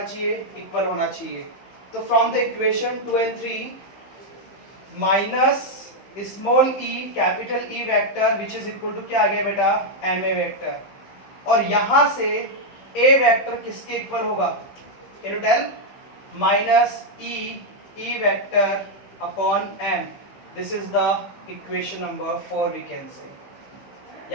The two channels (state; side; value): late; right; 15 ms